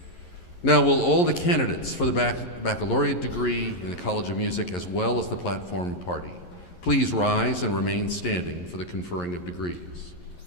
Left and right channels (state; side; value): late; right; 11 ms